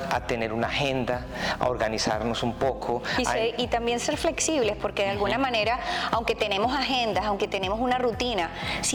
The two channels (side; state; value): both; identical; correlation 1.00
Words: a tener una agenda, a organizarnos un poco. Y también ser flexibles, porque de alguna manera, aunque tenemos agendas, aunque tenemos una rutina,